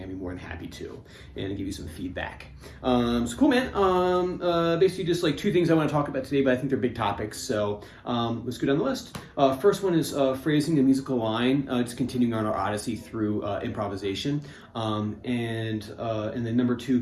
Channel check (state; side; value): identical; both; correlation 1.00